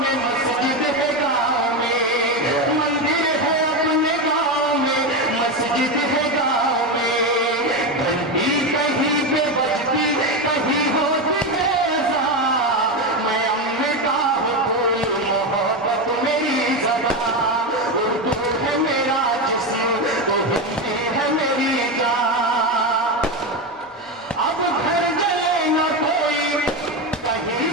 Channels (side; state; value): both; normal; correlation 0.14